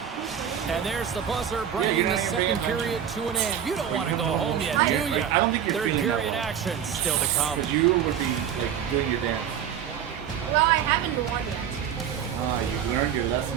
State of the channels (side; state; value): left; quieter; 9.0 dB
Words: And there's the buzzer bringing the second period to an end. You don't want to go home yet, do you? I don't think you're Third feeling period that action still to come. Because you would be like doing your dance. Well, I haven't won yet. You learned your lesson